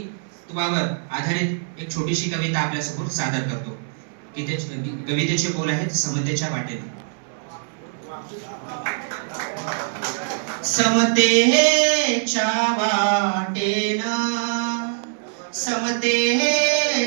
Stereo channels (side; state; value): left; silent; digital silence